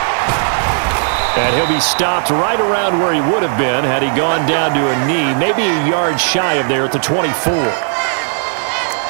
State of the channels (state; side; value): silent; left; digital silence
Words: And he'll be stopped right around where he would have been had he gone down to a knee, maybe a yard shy of there at the 24.